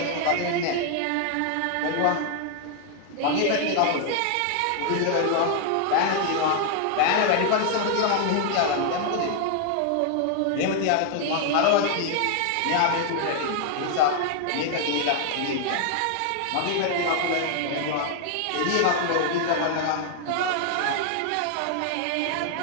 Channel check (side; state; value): both; different; correlation 0.00